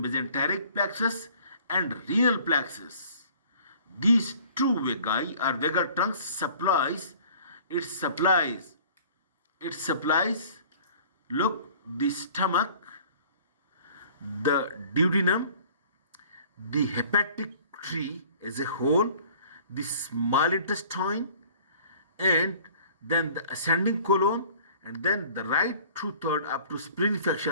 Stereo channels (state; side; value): inverted; both; correlation -0.51